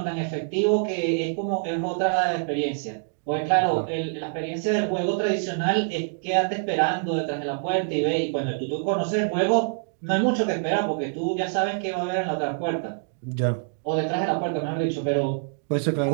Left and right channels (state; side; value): silent; left; digital silence